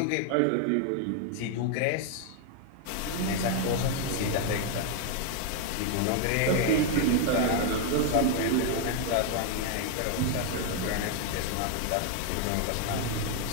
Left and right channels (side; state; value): both; different; correlation 0.00